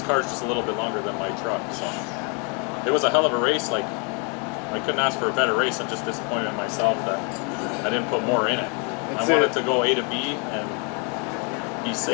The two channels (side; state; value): right; quieter; 35.5 dB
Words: car's just a little bit longer than my truck, so it was a hell of a race. Like, I couldn't ask for a better race. I'm just disappointed in myself that I didn't put more in it. I wanted to go A to B and be